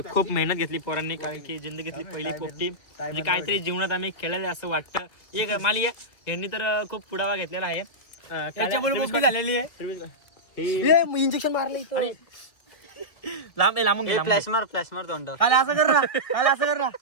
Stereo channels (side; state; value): right; late; 2.2 ms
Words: खूप मेहनत घेतली पोरांनी कारण की जिंदगीतली पहिली पोपटी म्हणजे काहीतरी जीवनात आम्ही केलेलं असं वाटतं एक माली यांनी तर खूप पुढावा घेतलेला आहे त्याच्यामुळे पोपटी झालेली आहे इंजेक्शन मारलं इथं लांब लांबून फ्लॅश मार तोंड काल असं कर ना काल असं कर ना